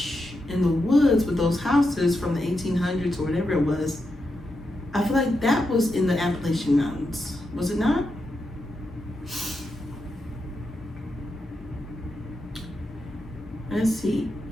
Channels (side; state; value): both; normal; correlation 0.86